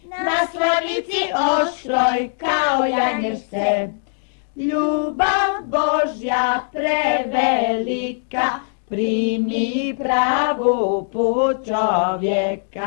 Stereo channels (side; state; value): right; silent; digital silence